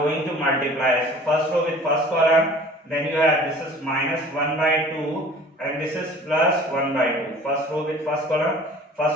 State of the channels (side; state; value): both; normal; correlation 0.47